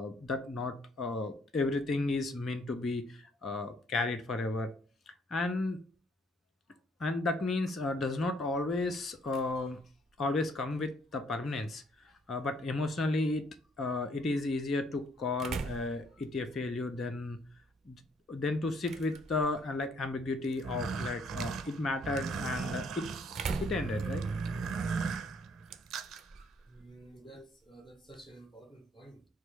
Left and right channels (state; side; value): normal; both; correlation 0.66